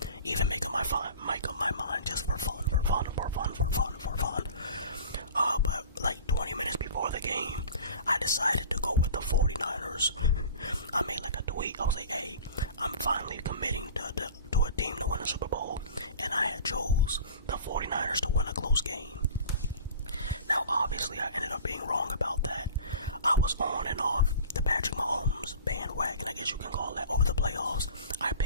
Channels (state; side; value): inverted; both; correlation -0.39